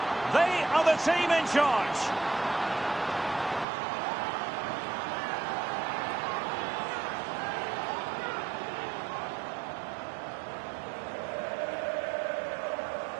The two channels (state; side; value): drops out; left; at 3.7 s